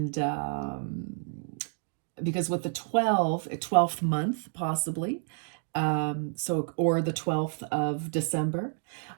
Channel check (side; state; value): left; silent; digital silence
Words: because with the 12th month, possibly, or the 12th of December.